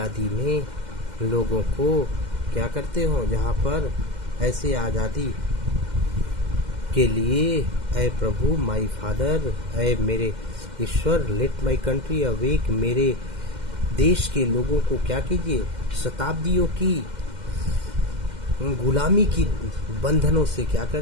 में लोगों को क्या करते हो, जहाँ पर ऐसे आज़ादी के लिए ऐ प्रभु माई फादर, ऐ मेरे ईश्वर, लेट माई कंट्री अवेक, मेरे देश के लोगों को क्या कीजिए, शताब्दियों की गुलामी की बंधनों से क्या कर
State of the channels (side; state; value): left; late; 2.1 ms